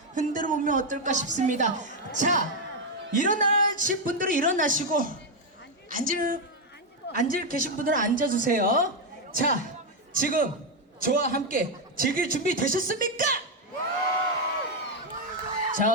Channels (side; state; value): both; normal; correlation 0.04